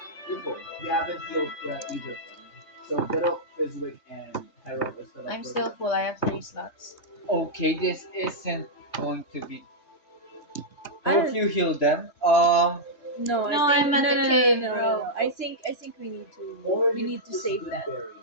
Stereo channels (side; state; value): right; late; 3.3 ms